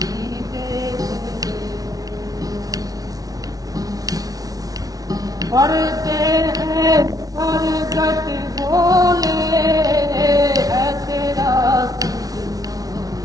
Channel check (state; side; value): late; left; 0.18 ms